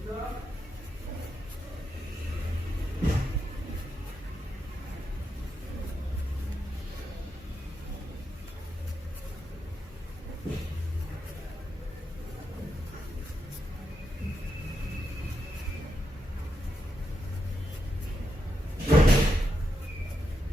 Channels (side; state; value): both; normal; correlation 0.84